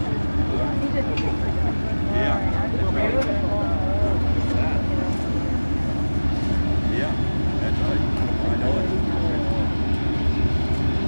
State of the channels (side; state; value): both; inverted; correlation -1.00